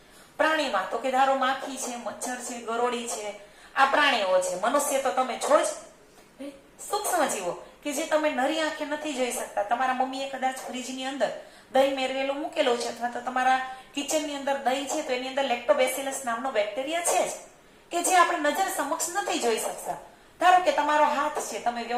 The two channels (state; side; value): identical; both; correlation 1.00